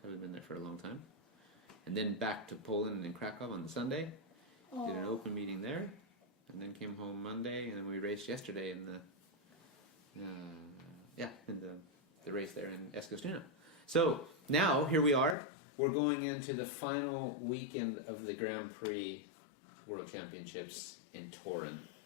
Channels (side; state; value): right; drops out; at 15.4 s